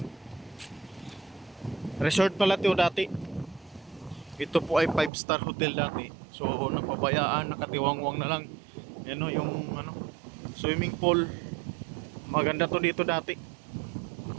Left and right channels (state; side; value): drops out; left; at 5.1 s